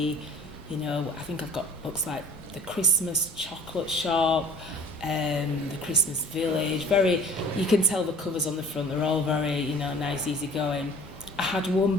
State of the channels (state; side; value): normal; both; correlation 0.48